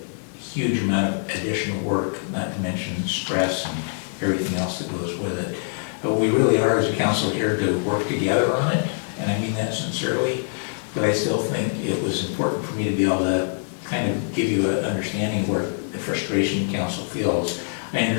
huge amount of additional work, not to mention stress and everything else that goes with it. But we really are, as a council, here to work together on it, and I mean that sincerely. But I still think it was important for me to be able to kind of give you an understanding where the frustration council feels. I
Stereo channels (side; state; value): right; silent; 63 dB below the other